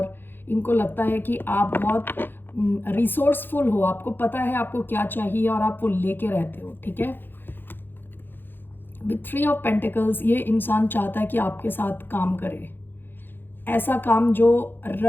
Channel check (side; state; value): right; late; 0.098 ms